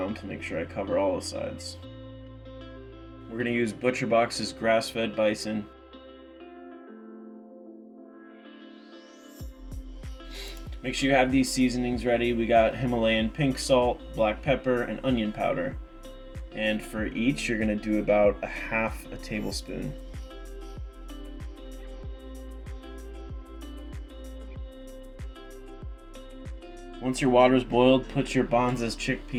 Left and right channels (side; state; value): both; identical; correlation 1.00